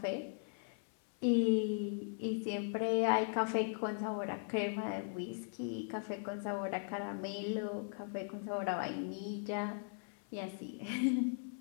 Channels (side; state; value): right; silent; 52 dB below the other